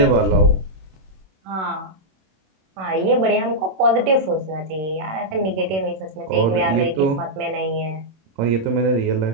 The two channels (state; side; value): late; left; 26 ms